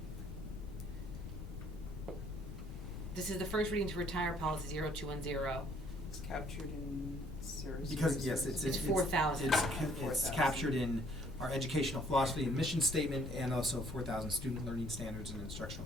This is the first reading to retire policy 0210. It's captured in Sarah's. Because, yes, it's 4,000. It's 4,000. captured in our educational philosophy and mission statement, and also 4,000 student learning standards and instructional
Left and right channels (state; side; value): noise; left; rumble, 8 dB below the sound